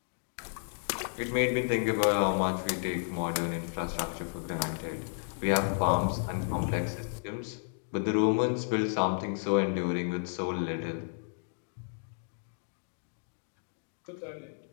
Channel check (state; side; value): silent; right; digital silence